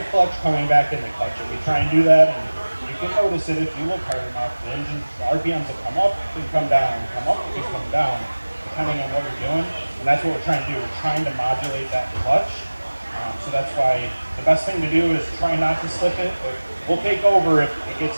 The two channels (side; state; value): both; inverted; correlation -1.00